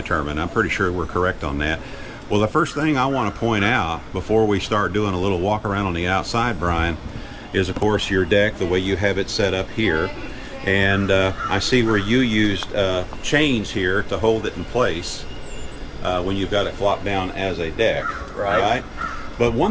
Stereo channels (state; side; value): identical; both; correlation 1.00